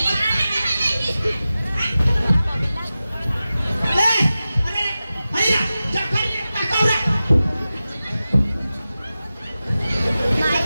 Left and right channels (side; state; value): both; inverted; correlation -0.94